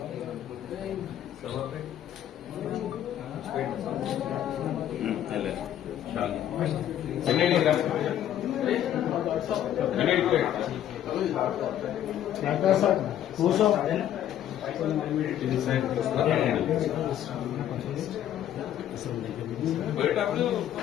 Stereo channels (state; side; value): quieter; right; 11.1 dB